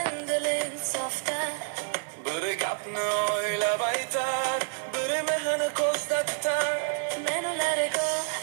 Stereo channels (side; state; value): left; silent; digital silence